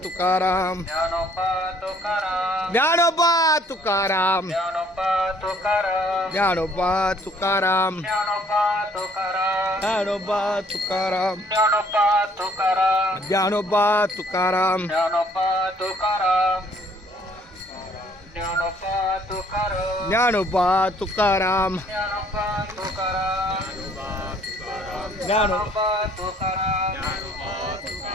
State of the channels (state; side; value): normal; both; correlation 0.61